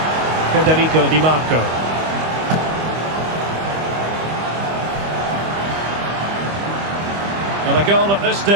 Federico Di Marco. And a goal at this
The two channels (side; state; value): left; late; 25 ms